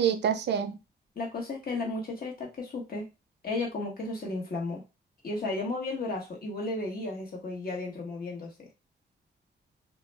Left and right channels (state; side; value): normal; both; correlation 0.32